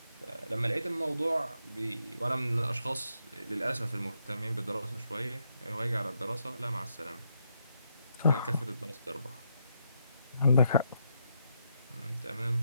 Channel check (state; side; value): inverted; both; correlation -0.79